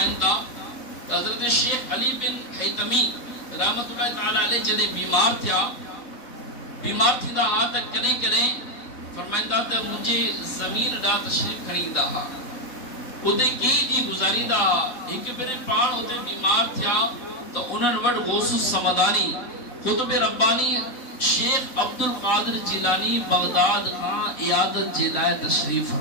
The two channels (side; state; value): right; late; 3.6 ms